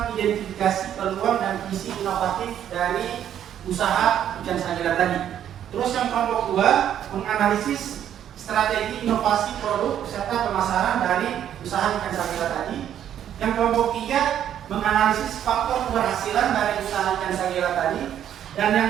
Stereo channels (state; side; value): quieter; left; 10.2 dB